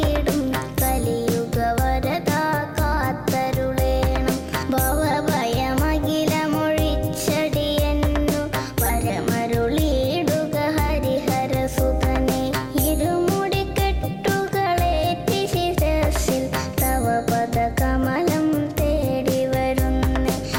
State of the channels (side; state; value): both; identical; correlation 1.00